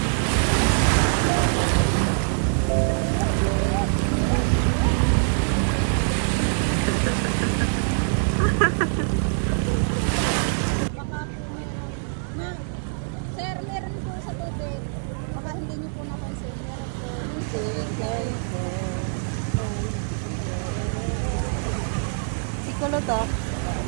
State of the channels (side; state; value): left; silent; 57 dB below the other